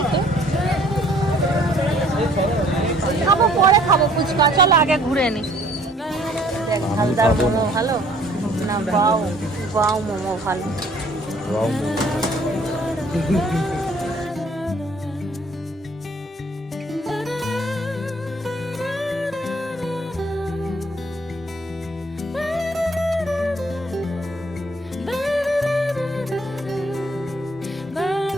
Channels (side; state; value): both; normal; correlation 0.58